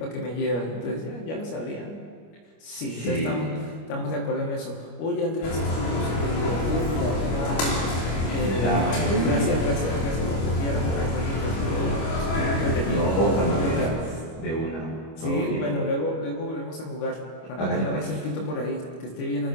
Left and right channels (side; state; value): right; late; 25 ms